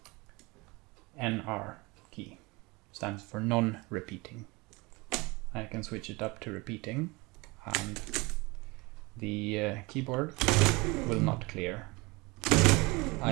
NR key, stands for non-repeating. I can switch it up to repeating, and the keyboard will not clear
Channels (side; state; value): left; quieter; 24.8 dB